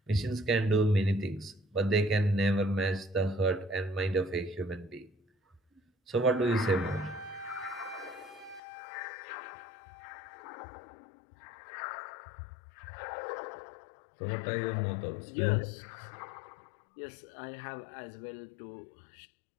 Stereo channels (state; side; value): drops out; right; at 8.6 s